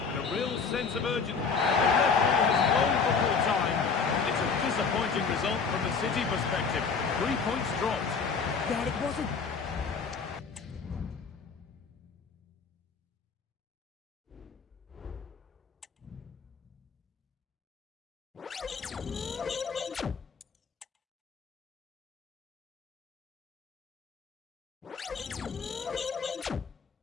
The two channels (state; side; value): quieter; right; 5.4 dB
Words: Real sense of urgency. The referee has blown for full time. It's a disappointing result from the City perspective. 3 points dropped. Yeah, it wasn't.